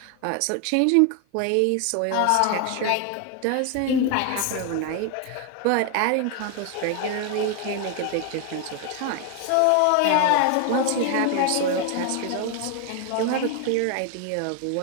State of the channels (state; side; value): different; both; correlation 0.01